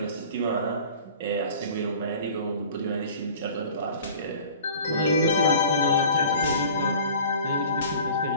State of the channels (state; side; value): inverted; both; correlation -0.45